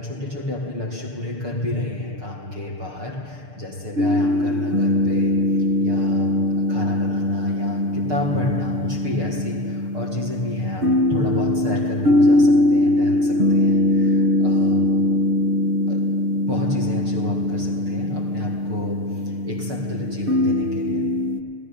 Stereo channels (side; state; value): left; late; 6.7 ms